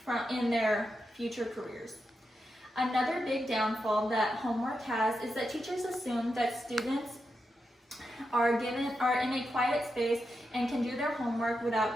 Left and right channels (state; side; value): normal; both; correlation 0.87